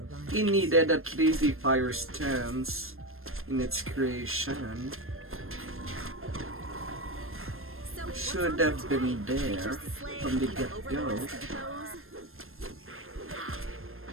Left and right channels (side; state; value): left; late; 0.60 ms